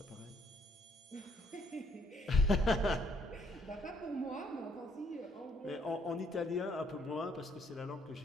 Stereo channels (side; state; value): both; normal; correlation 0.69